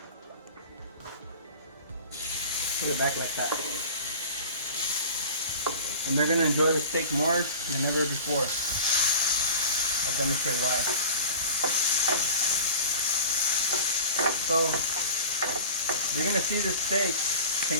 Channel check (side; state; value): both; inverted; correlation -0.37